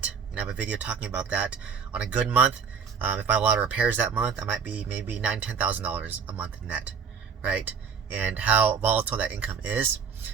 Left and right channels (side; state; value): left; quieter; 6.5 dB